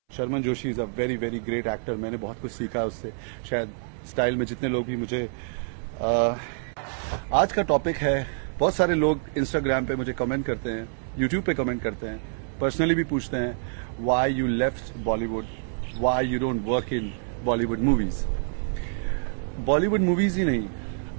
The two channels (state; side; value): silent; left; 60 dB below the other